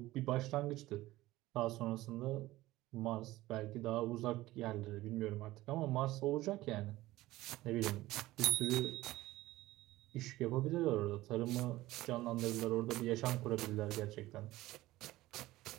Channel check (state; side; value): quieter; left; 17.2 dB